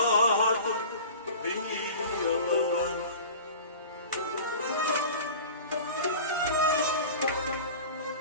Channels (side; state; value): both; inverted; correlation -0.38